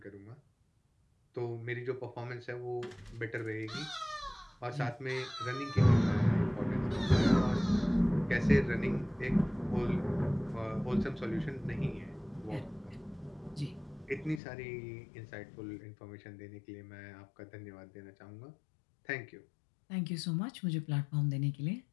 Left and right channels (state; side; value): drops out; right; at 14.4 s